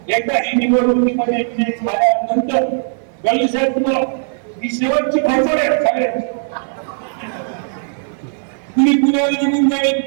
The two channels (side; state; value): left; silent; 59 dB below the other